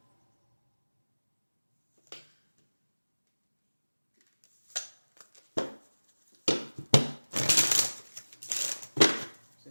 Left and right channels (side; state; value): both; inverted; correlation -1.00